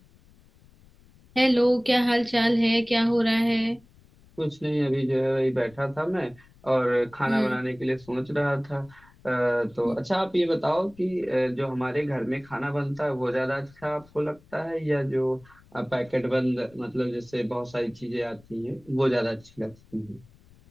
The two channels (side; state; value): left; noise; rumble, 27 dB below the sound